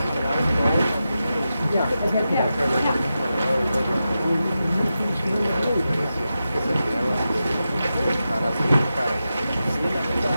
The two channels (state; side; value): inverted; both; correlation -0.91